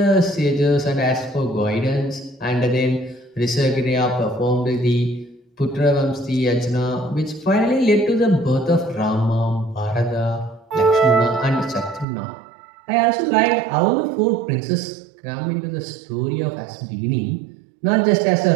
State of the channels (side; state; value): left; drops out; at 12.1 s